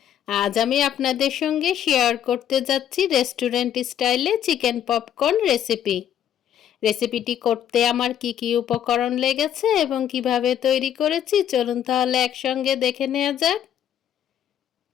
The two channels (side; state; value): right; quieter; 10.0 dB